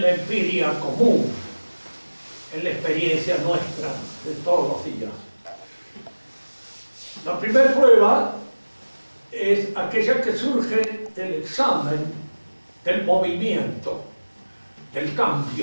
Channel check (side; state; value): both; inverted; correlation -1.00